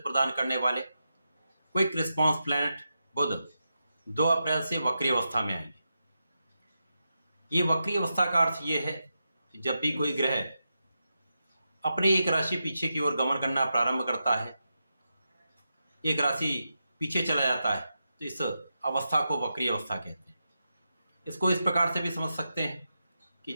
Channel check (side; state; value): both; inverted; correlation -0.88